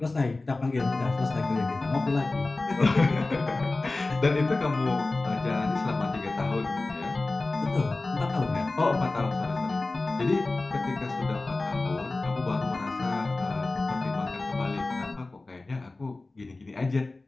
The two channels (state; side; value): quieter; right; 3.2 dB